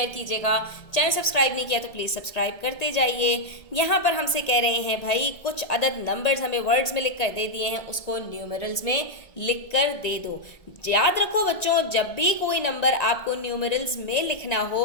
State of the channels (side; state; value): right; late; 1.8 ms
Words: कीजिएगा। चैनल सब्सक्राइब नहीं किया तो प्लीज़ सब्सक्राइब करते जाइए। यहाँ पर हमसे कह रहे हैं भाई कुछ अदद नंबर्स हमें वर्ड्स में लिख कर दे दिए हैं, उसको न्यूमेरल्स में लिख कर दे दो। याद रखो बच्चों, जब भी कोई नंबर आपको न्यूमेरल्स में लिखना हो